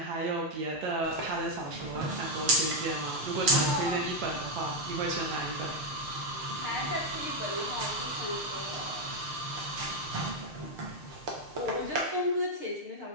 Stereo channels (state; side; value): late; left; 6.6 ms